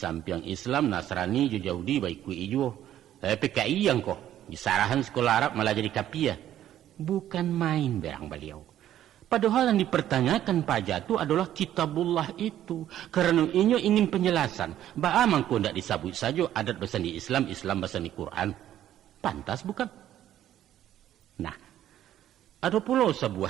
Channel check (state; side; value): quieter; left; 11.9 dB